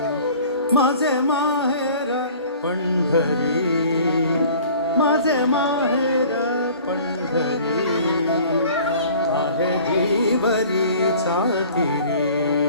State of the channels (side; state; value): both; inverted; correlation -0.47